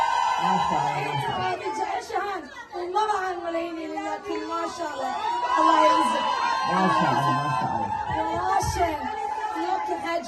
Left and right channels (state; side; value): identical; both; correlation 1.00